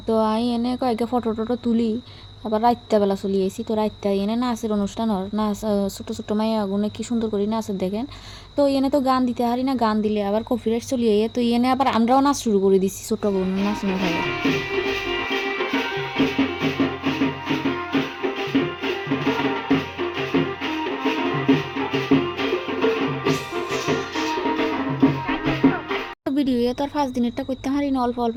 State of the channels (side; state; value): both; identical; correlation 1.00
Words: তো আমি এনে কয়েকটা ফটো টটো তুলি। আবার রাইতে বেলা চলে আসি। তো রাইতে এনে নাচের অনুষ্ঠান নাচ, ছোটো ছোটো মাইয়া আগুনে কি সুন্দর করে নাচের দেখেন। তো এনে তো গান দিতে হারি না, গান দিলে আবার কপিরাইট চলিয়ে। তো এনে আবার আমরাও নাচ শুরু করে দিছি ছোটো বোন নাচ। ভিডিও তো আর 5 দিনেরটা করতে হারি না, অল্প অল্প